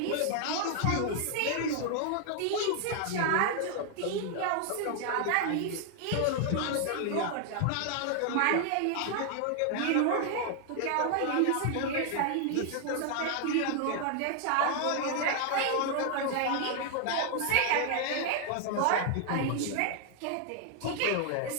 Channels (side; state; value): both; different; correlation 0.00